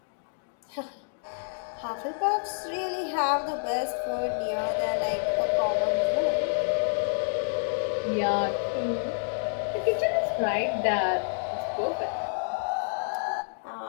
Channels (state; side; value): silent; right; digital silence